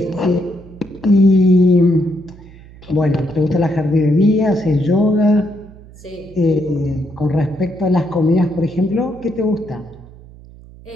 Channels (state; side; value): noise; right; hum, 21 dB below the sound